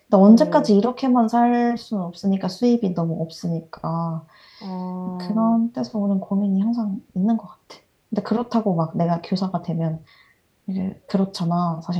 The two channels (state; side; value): identical; both; correlation 1.00